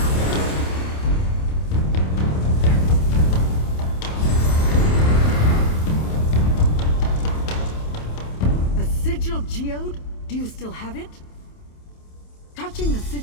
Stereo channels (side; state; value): right; late; 27 ms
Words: The sigil geode? Do you still have it? Touching the